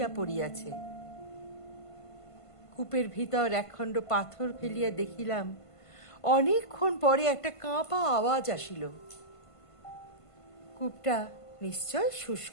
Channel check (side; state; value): right; late; 1.5 ms